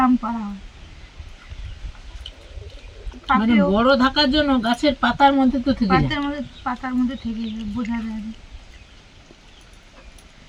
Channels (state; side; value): identical; both; correlation 1.00